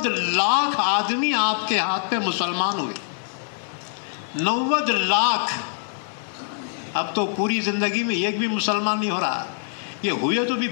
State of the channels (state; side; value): silent; right; 63 dB below the other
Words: لاکھ آدمی آپ کے ہاتھ پہ مسلمان ہوئے. 90 لاکھ. اب تو پوری زندگی میں ایک بھی مسلمان نہیں ہو رہا. یہ ہوئے تو بھی